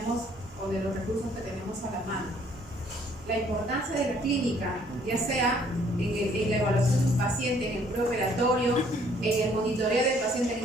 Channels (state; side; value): normal; both; correlation 0.62